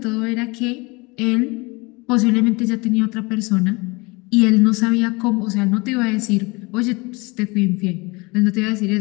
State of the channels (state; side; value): quieter; right; 25.8 dB